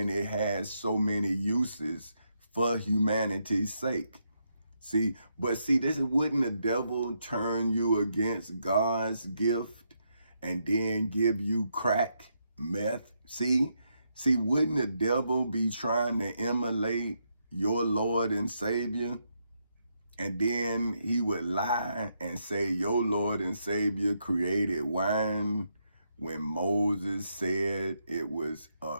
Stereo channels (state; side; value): inverted; both; correlation -0.80